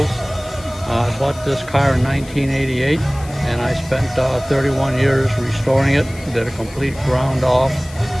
I bought this car in 1988 and I spent 31 years restoring it. Did a complete ground off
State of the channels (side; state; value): left; noise; hiss, 20 dB below the sound